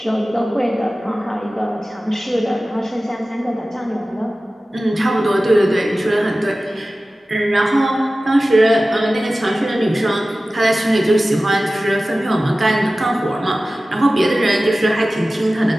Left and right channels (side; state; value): both; normal; correlation 0.96